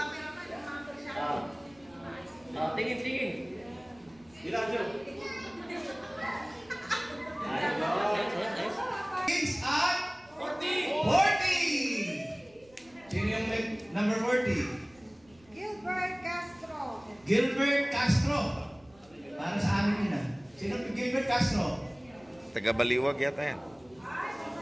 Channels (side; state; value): right; noise; rumble, 29 dB below the sound